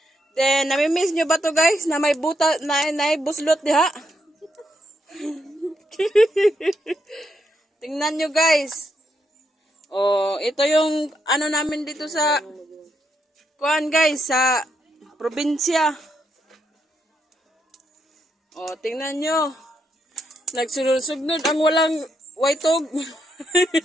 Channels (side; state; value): both; normal; correlation 0.79